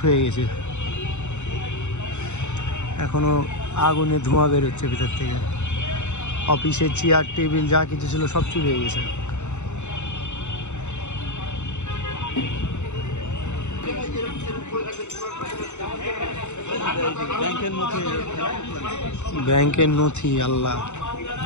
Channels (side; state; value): right; late; 0.83 ms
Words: হয়ে গেছে। এখনো আগুনে ধোঁয়া বেরোচ্ছে ভিতর থেকে। অফিসের চেয়ার টেবিল যা কিছু ছিল সব চুরি হয়ে গেছে। ব্যাংকের নথি, আল্লাহ,